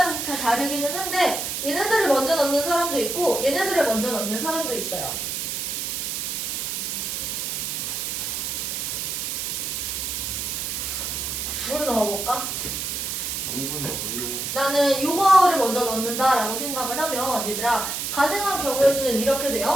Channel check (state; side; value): noise; right; hiss, 3 dB below the sound